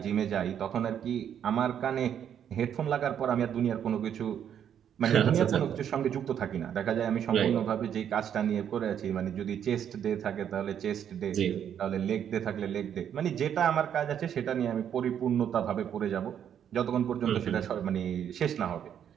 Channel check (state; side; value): quieter; left; 9.1 dB